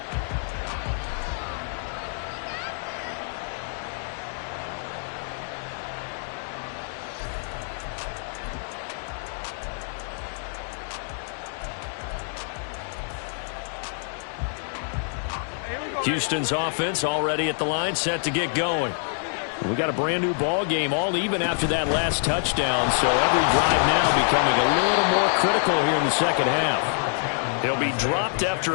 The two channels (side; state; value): right; silent; 61 dB below the other